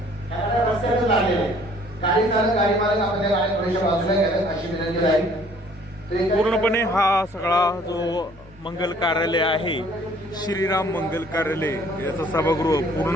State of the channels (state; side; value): normal; both; correlation 0.57